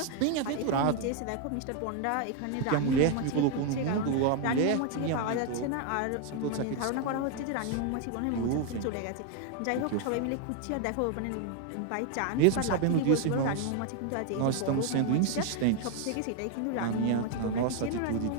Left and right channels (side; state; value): both; different; correlation 0.01